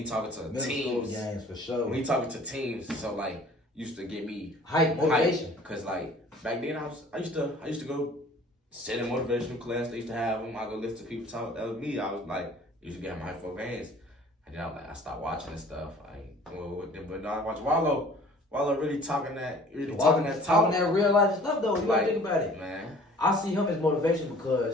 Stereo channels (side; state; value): both; normal; correlation 0.50